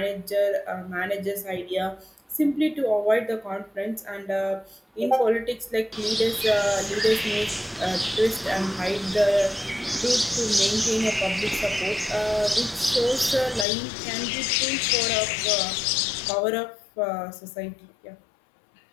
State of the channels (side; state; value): right; drops out; at 13.7 s